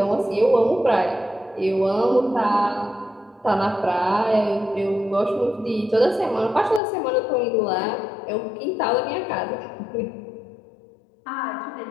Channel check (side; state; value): right; drops out; at 6.8 s